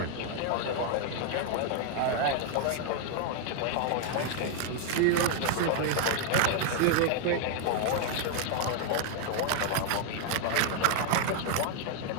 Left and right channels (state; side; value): different; both; correlation 0.00